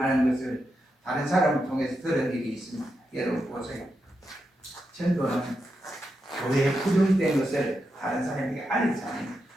하는 것을 다른 사람을 통해서 들은 일이 있습니다. 여러분 보세요. 전도는 교회에 부정된 것을 다른 사람에게 알리잖아요.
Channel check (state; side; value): normal; both; correlation 0.86